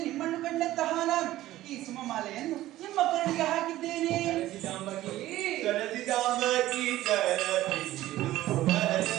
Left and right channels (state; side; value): quieter; left; 15.2 dB